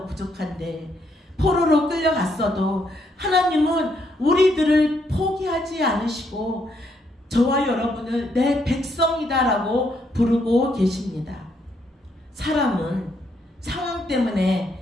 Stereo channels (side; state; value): both; normal; correlation 0.74